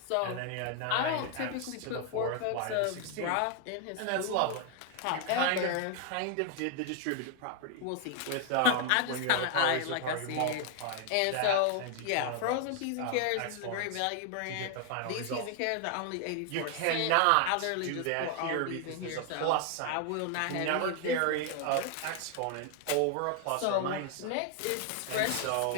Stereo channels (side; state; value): both; different; correlation 0.00